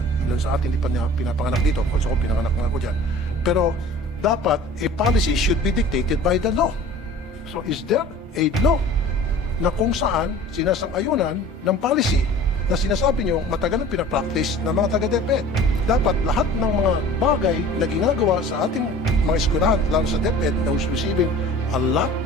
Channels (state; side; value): normal; both; correlation 0.44